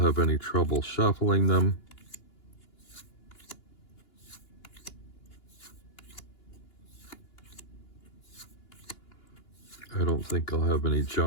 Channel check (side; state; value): right; late; 2.9 ms